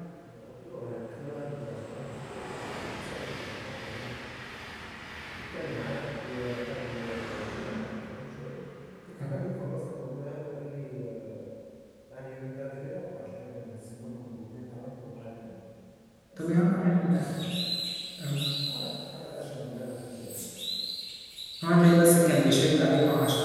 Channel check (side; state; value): both; identical; correlation 1.00